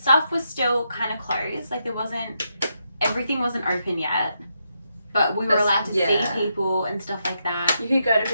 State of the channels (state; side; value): inverted; both; correlation -0.82